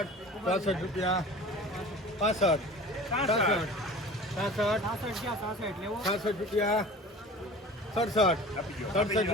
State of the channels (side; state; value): both; normal; correlation 0.40